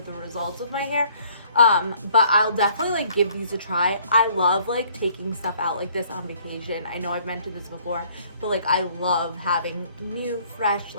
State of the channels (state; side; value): inverted; both; correlation -0.60